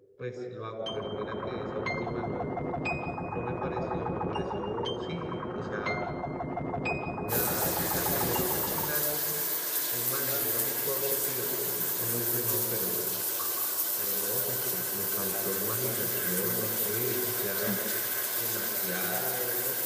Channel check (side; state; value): both; identical; correlation 1.00